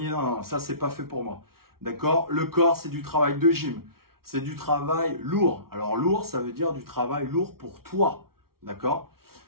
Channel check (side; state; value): left; late; 0.94 ms